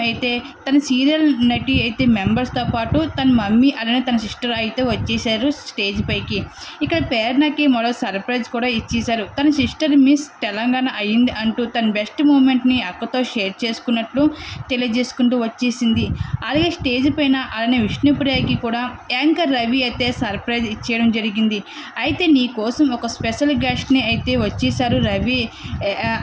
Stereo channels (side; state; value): both; identical; correlation 1.00